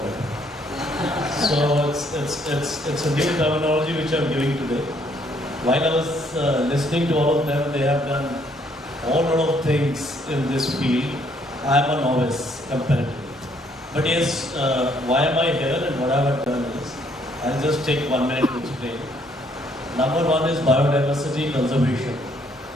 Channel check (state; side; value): normal; both; correlation 0.67